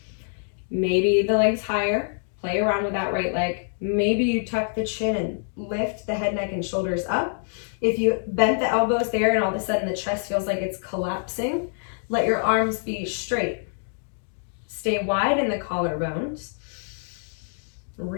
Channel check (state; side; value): silent; right; digital silence